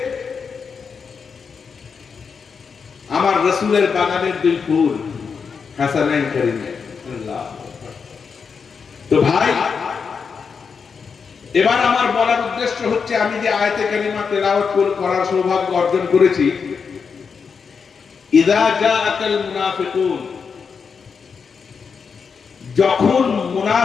আমার রাসূলের বাগানের দুই ফুল, হাসানাইন কারীমাইন। তো ভাই, এবার আমার বলার উদ্দেশ্য হচ্ছে, আমি যে আয়াতে কারিমা তেলাওয়াত করার সৌভাগ্য অর্জন করেছি, ইযা জাআকাল মুনাফিকুন, যখন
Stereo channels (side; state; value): right; quieter; 5.8 dB